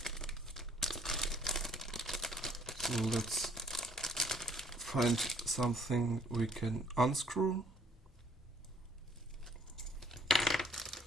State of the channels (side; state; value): both; normal; correlation 0.61